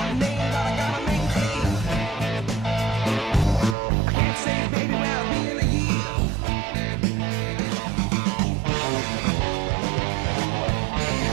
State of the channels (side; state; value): left; drops out; at 3.8 s